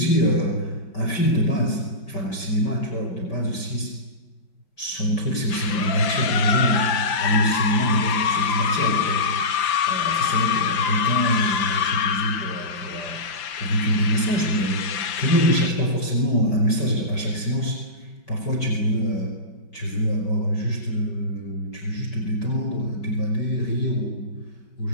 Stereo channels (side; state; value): right; late; 5.8 ms